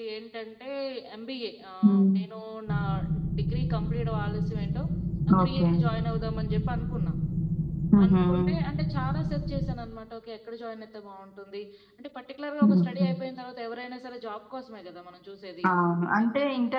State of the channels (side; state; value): both; identical; correlation 1.00